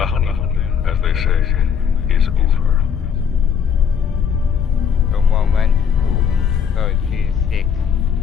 honeymoon, as they say, is over. The moment 36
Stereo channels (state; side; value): quieter; right; 7.4 dB